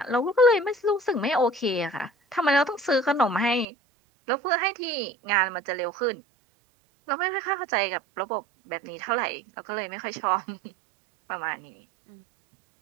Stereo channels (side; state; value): left; drops out; at 3.7 s